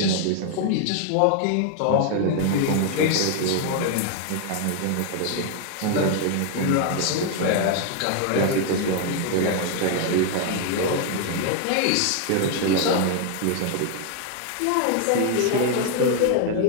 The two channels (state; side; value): different; both; correlation 0.00